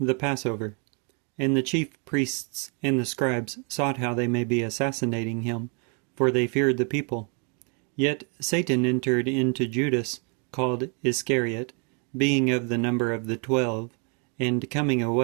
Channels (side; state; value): left; quieter; 37.4 dB